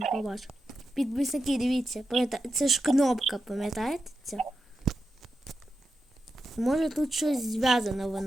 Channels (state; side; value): normal; both; correlation 0.88